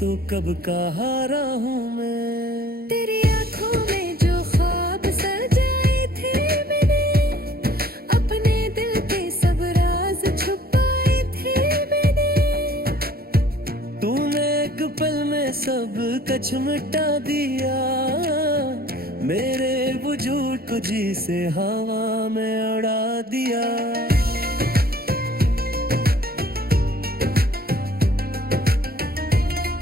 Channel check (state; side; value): late; left; 0.44 ms